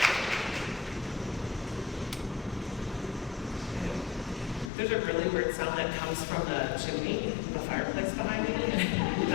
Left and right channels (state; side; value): drops out; right; at 4.7 s